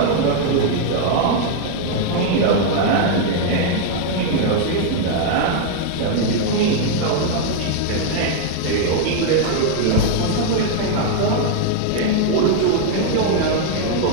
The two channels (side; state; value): both; different; correlation 0.00